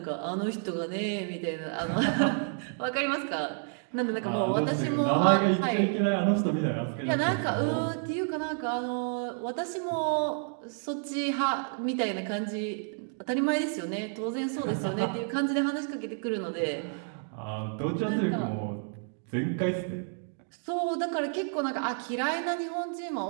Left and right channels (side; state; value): left; silent; 58 dB below the other